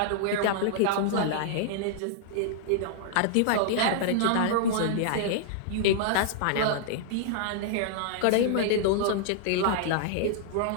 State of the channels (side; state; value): both; different; correlation -0.01